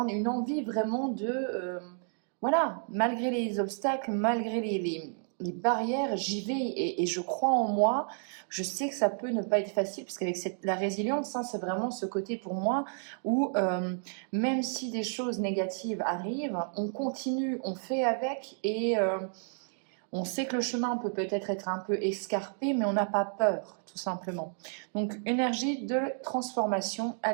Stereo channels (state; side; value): silent; left; 57 dB below the other